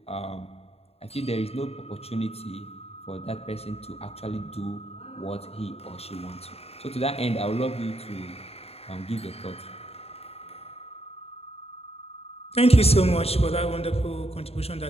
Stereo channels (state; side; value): late; right; 0.29 ms